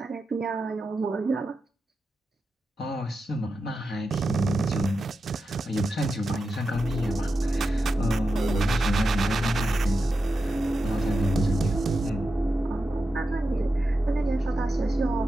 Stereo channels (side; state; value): both; normal; correlation 0.90